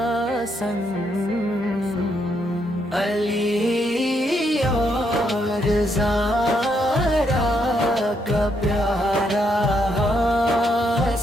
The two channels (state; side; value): normal; both; correlation 0.76